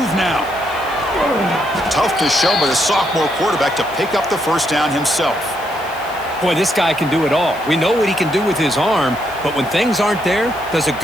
now. Tough to show by the sophomore quarterback to pick up the first down himself. Boy, this guy can do it all. We know what he can do with his arm, but when things aren't there, does a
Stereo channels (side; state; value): left; noise; hiss, 21 dB below the sound